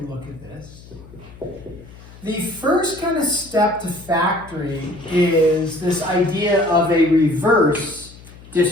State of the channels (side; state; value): left; noise; hum, 20 dB below the sound